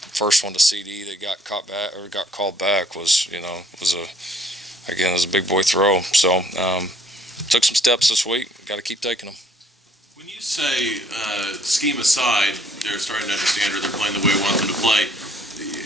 one to CD that got called back was a big boy throw. So took some steps this week. Got to keep taking them. When you say scheme aside, they're starting to understand or they're playing the way we want them to play,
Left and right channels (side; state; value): both; normal; correlation 0.63